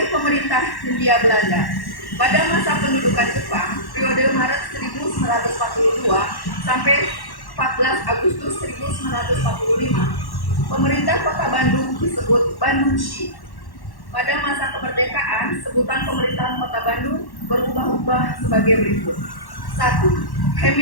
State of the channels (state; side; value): late; right; 1.1 ms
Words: pemerintah Hindia Belanda. Pada masa pendudukan Jepang, periode Maret 1942 sampai 14 Agustus 1945, pemerintah Kota Bandung disebut Bandungshi. Pada masa kemerdekaan, sebutan pemerintahan Kota Bandung berubah-ubah sebagai berikut. 1.